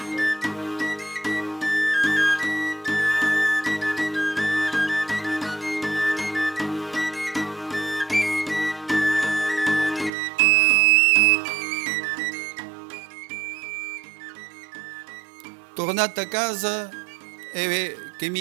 Tornato a casa e che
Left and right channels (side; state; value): left; drops out; at 10.1 s